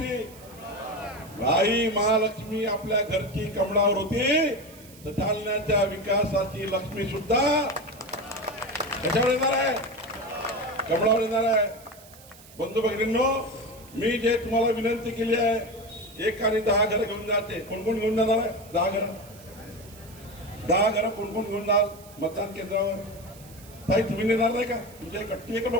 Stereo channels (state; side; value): noise; right; hiss, 22 dB below the sound